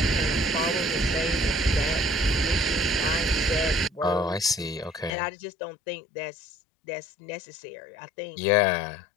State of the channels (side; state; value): right; drops out; at 5.1 s